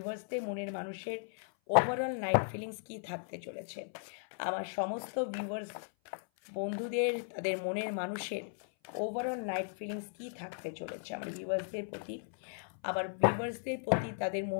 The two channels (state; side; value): silent; right; 54 dB below the other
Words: মনের মানুষের ওভারঅল নাইট ফিলিংস কী থাকতে চলেছে, আমার সমস্ত ভিউয়ার্স বন্ধুদের তাদের মনের মানুষের ওভারঅল নাইট ফিলিংস কী থাকতে চলেছে আমার ভিউয়ার্সদের প্রতি, তাদের